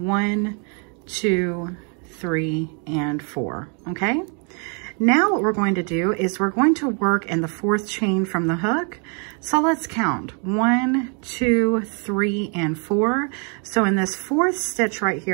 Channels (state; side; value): quieter; left; 38.5 dB